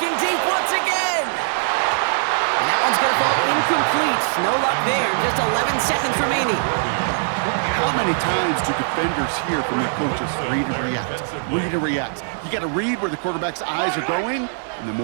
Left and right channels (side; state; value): left; silent; 55 dB below the other